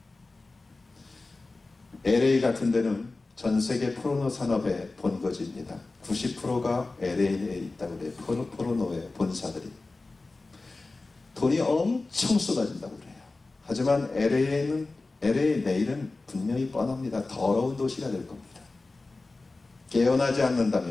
LA 같은 데는 전 세계 포르노 산업의 본거지입니다. 90%가 LA에 있다고 그래요. 포르노의 본사들이. 돈이 엄청 쏟아진다고 그래요. 하지만 LA의 내일은 분명히 뻔합니다. 더러운 도시가 될 겁니다. 깨어나지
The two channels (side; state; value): right; quieter; 3.4 dB